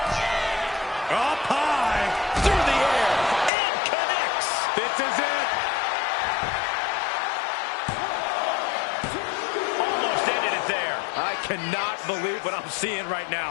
Up high. Through the air. And connects. This is it. Almost ended it there. I cannot believe what I'm seeing right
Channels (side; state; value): right; drops out; at 3.5 s